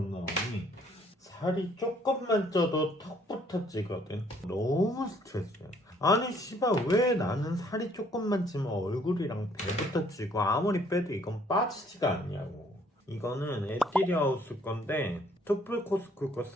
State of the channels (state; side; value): normal; both; correlation 0.63